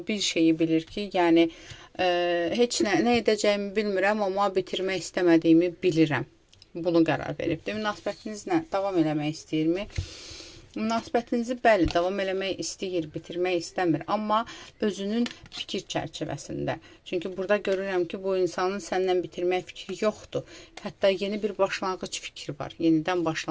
bir şeyi bilir ki, yəni heç nə edəcəyimi bilmirəm, amma bitirmək istəmədiyimi bilirəm. Bunu qərar veribdir. Münasibətinizlə davam eləmək istəyirmi? Münasibətinizi bəli, davam eləmək istəyir, bitirmək istəmir, amma özünün fikir çərçivəsində. Çünki burada görürəm ki, bu insanın səndən bitirmək fikri yoxdur. Hətta yeni bir başlanğıc fikri var. Yenidən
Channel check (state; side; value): identical; both; correlation 1.00